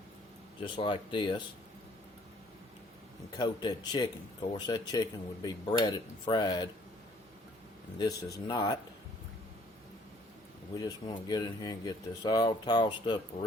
just like this and coat that chicken. Of course that chicken would be breaded and fried and this is not. We just want to get in here and get this all tossed up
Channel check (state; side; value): normal; both; correlation 0.59